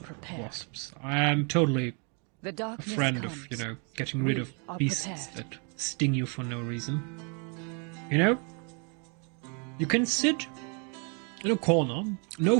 prepared. wasps. I am totally The a darkness friend comes. of, getting rid We of are beasts prepared. that sting you for no reason. You can sit in a corner, no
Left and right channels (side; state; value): left; quieter; 37.3 dB